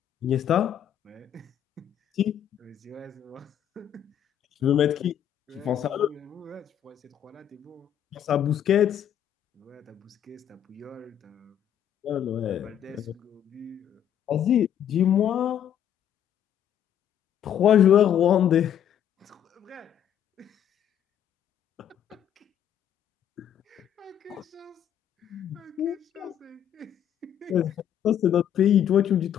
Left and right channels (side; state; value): right; quieter; 9.7 dB